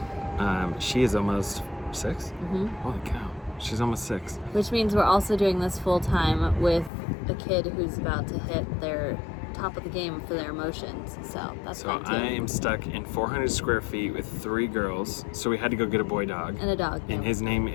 she is almost 6. Mm-hmm. Holy cow, she's almost 6. Which means we're also doing this full time with a kid who's about to hit their top of the game for their emotions. So that's fun too. I am stuck in 400 square feet with 3 girls. So we had to go get a boy dog. And a dog. And his name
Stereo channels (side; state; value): right; drops out; at 6.9 s